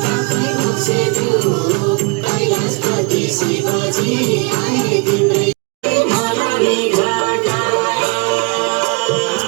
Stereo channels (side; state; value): left; quieter; 29.6 dB